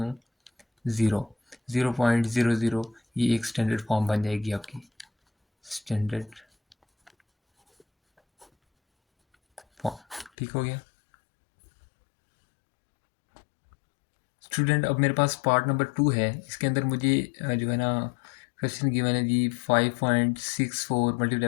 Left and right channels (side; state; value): right; drops out; at 10.3 s